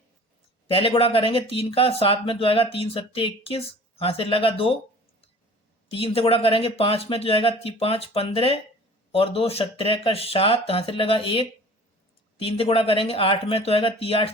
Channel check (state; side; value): normal; both; correlation 0.45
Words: पहले गुणा करेंगे 3 का 7 में, तो आएगा 3 7 21, हासिल लगा 2। 3 से गुणा करेंगे 5 में, तो जाएगा 5 15 और 2 17 का 7 हासिल लगा 1। 3 से गुणा करेंगे 8 में, तो आएगा 3